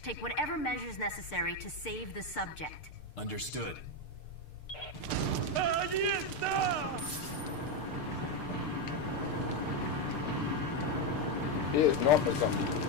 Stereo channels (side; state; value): right; late; 6.7 ms